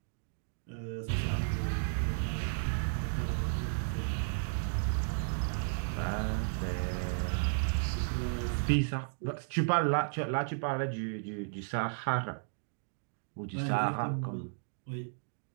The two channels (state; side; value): silent; left; digital silence